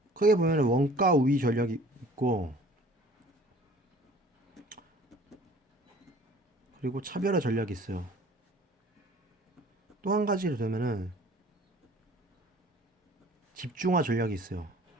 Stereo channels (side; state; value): both; normal; correlation 0.49